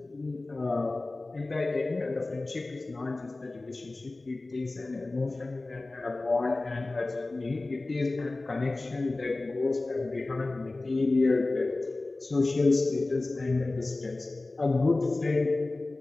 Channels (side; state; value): right; quieter; 3.1 dB